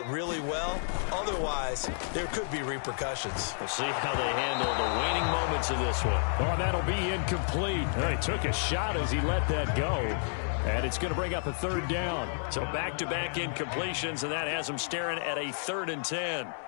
really well. Otherwise, there could be repercussions. We'll see how they handle the waning moments of this one. Oh, that'll be incomplete. He took a shot as he let that go. And it's going to bring up a third down. So back-to-back incompletions, and that has them staring at a 3rd and 10.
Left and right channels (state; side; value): silent; right; digital silence